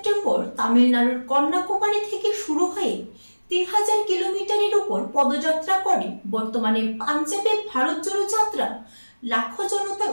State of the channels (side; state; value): both; inverted; correlation -1.00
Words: তামিলনাড়ুর কন্যাকুমারী থেকে শুরু হয়ে 3000 কিলোমিটারের উপর পদযাত্রা করে বর্তমানে পাঞ্জাবে ভারত জোড়ো যাত্রা লাখো জনতার